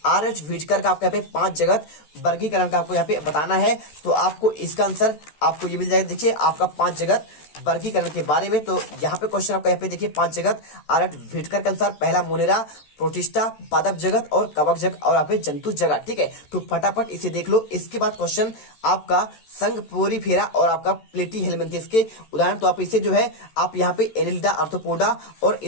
RH व्हिटकर का आपको यहाँ पे 5 जगत वर्गीकरण का आपको यहाँ पे बताना है। तो आपको इसका आंसर आपको ये मिल जाएगा। देखिए आपका 5 जगत वर्गीकरण के बारे में। तो यहाँ पे क्वेश्चन आपका यहाँ पे देखिए 5 जगत RH व्हिटकर के अनुसार, पहला मोनेरा, प्रोटिस्टा, पादप जगत और कवक जगत और यहाँ पे जंतु जगत। ठीक है, तो फटाफट इसे देख लो। इसके बाद क्वेश्चन आपका संघ पोरीफेरा और आपका प्लेटी हेलमिंथेस के उदाहरण। तो आप इसे जो है आप यहाँ पे एनिलिडा, आर्थ्रोपोडा और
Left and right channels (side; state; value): right; late; 14 ms